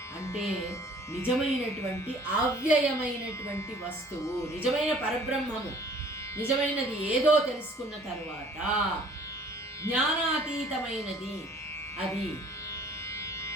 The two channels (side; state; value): both; normal; correlation 0.54